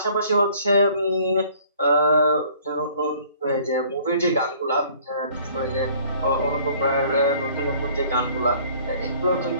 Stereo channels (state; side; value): inverted; both; correlation -0.56